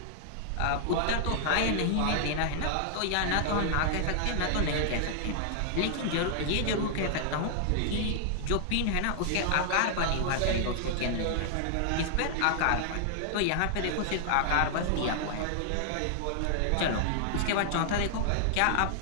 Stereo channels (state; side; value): different; both; correlation -0.01